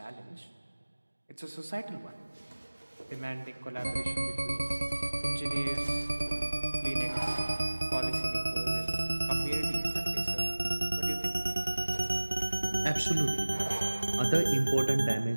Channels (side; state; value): both; inverted; correlation -1.00